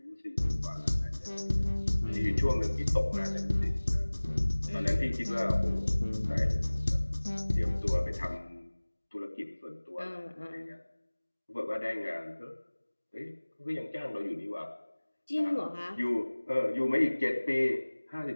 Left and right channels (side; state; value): both; inverted; correlation -1.00